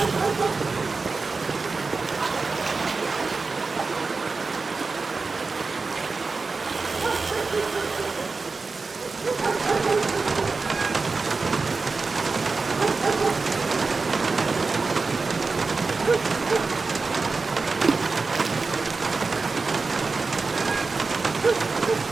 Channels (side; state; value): left; quieter; 4.1 dB